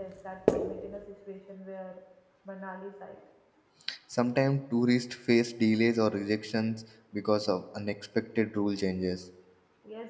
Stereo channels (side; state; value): both; identical; correlation 1.00